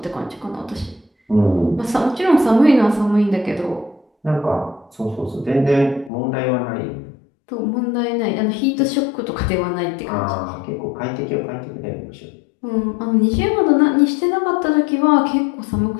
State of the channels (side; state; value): right; drops out; at 6.1 s